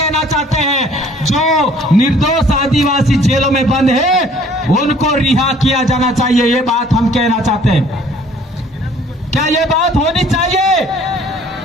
चाहते हैं, जो निर्दोष आदिवासी जेलों में बंद है उनको रिहा किया जाना चाहिए। ये बात हम कहना चाहते हैं। क्या ये बात होनी चाहिए?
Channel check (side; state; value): both; normal; correlation 0.55